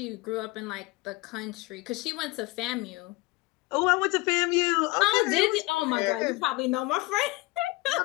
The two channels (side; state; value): right; quieter; 22.3 dB